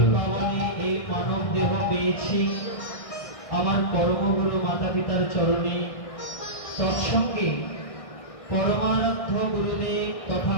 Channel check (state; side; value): late; right; 1.6 ms